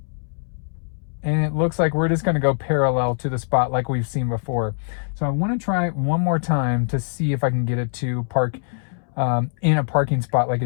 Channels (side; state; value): right; silent; 64 dB below the other